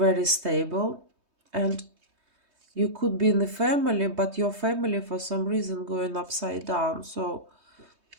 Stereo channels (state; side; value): late; left; 3.2 ms